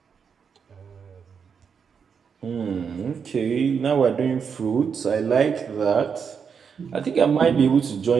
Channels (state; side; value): quieter; left; 6.5 dB